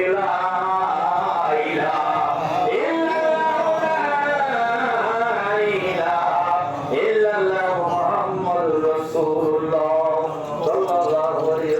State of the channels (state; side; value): identical; both; correlation 1.00